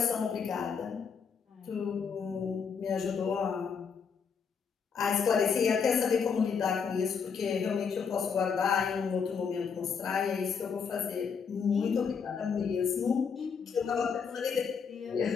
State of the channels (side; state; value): right; quieter; 6.2 dB